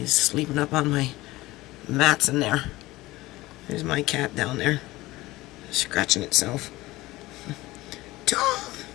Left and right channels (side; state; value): right; quieter; 18.9 dB